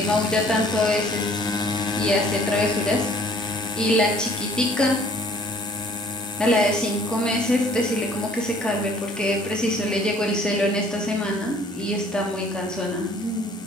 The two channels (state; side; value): normal; both; correlation 0.56